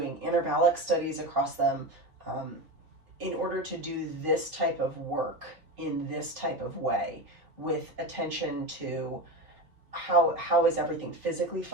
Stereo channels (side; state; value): left; late; 4.4 ms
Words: intervallic studies across them in order to do this type of work in this type of way, with attention to how is everything physically